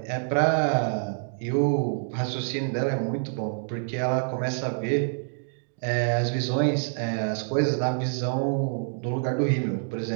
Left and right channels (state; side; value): silent; left; digital silence